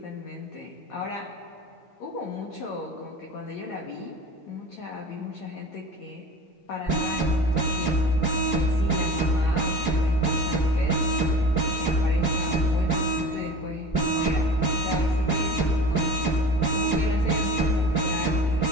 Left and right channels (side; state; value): both; normal; correlation 0.35